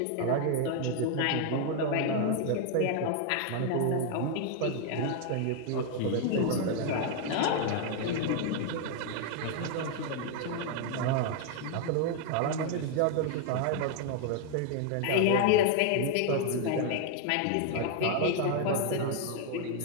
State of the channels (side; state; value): both; different; correlation 0.00